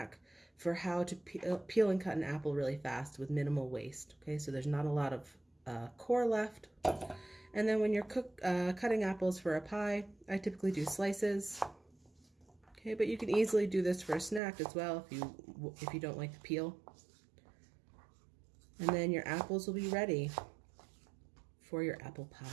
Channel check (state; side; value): drops out; left; at 14.4 s